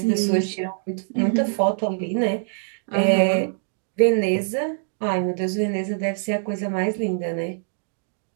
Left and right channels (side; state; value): left; silent; digital silence